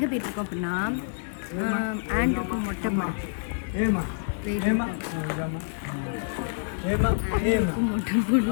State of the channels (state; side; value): silent; right; digital silence